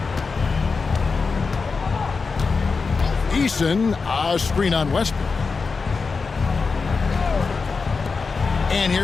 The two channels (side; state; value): right; quieter; 4.7 dB